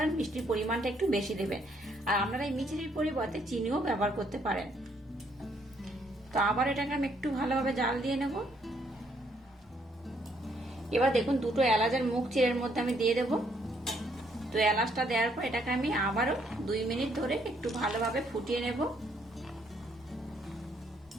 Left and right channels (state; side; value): normal; both; correlation 0.70